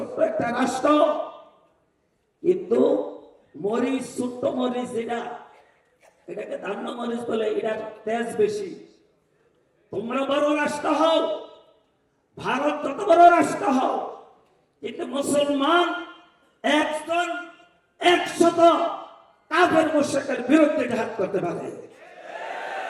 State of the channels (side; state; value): both; identical; correlation 1.00